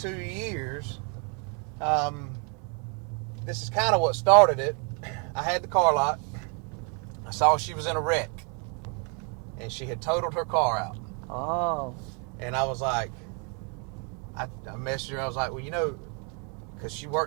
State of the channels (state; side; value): quieter; left; 37.5 dB